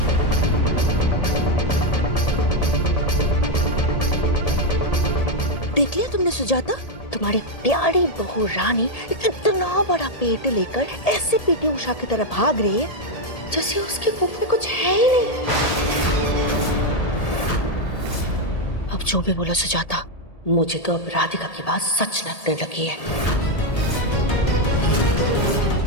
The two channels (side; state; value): right; late; 1.8 ms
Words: देख लिया तुमने सुजाता, तुम्हारी प्यारी बहू रानी इतना बड़ा पेट लेकर ऐसे पीटी उषा की तरह भाग रही है जैसे उसके मुंह में कुछ है ही नहीं। अब जो भी बोला सुजाता, मुझे तो अब राधिका की बात सच लगने लगी है।